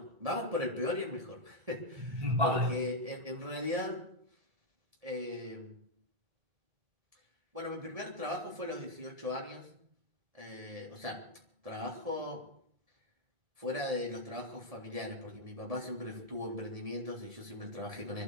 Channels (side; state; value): left; late; 1.7 ms